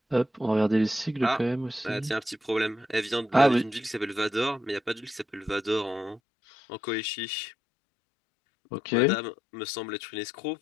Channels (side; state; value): right; drops out; at 6.2 s